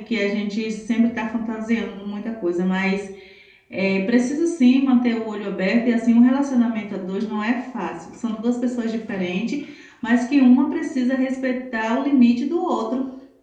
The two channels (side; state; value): both; identical; correlation 1.00